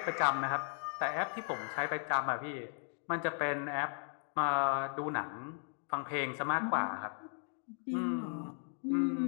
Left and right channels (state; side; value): silent; right; 54 dB below the other